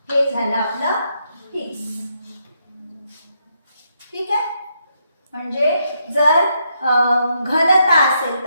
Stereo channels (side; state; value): both; inverted; correlation -0.78